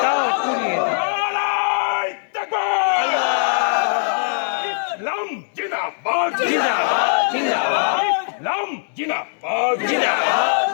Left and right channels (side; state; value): right; silent; digital silence